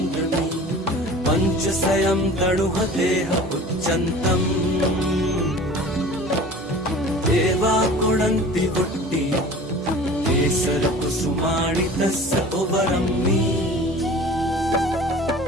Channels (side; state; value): both; normal; correlation 0.42